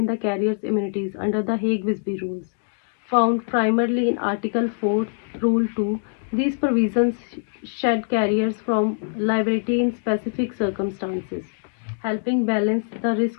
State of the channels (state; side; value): silent; right; digital silence